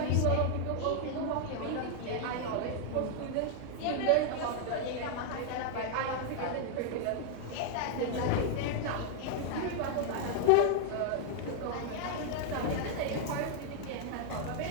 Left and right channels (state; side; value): different; both; correlation 0.00